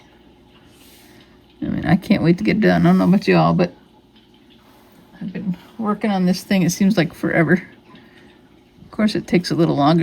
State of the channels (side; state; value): both; identical; correlation 1.00